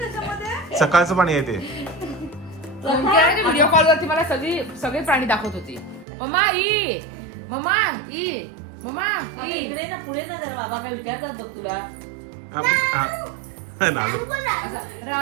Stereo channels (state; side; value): drops out; left; at 6.1 s